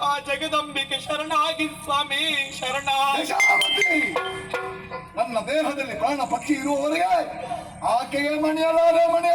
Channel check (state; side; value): identical; both; correlation 1.00